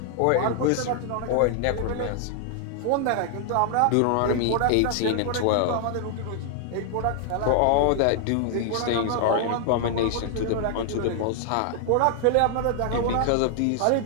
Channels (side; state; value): both; different; correlation 0.00